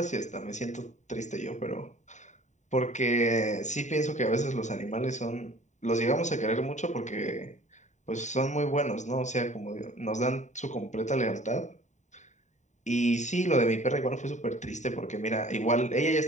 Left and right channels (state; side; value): late; right; 0.34 ms